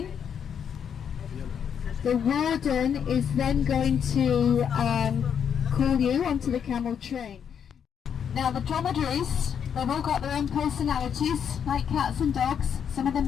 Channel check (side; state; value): right; quieter; 7.9 dB